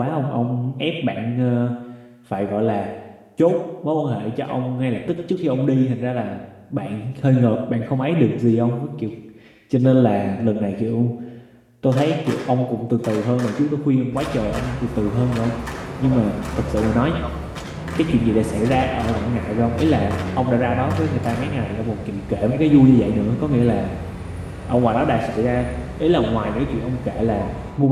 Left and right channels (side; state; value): both; identical; correlation 1.00